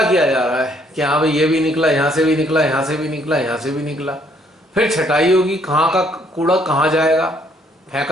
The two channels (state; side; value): normal; both; correlation 0.66